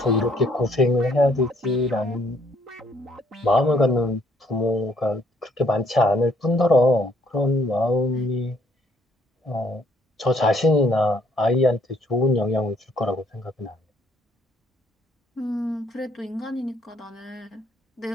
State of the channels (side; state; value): both; normal; correlation 0.66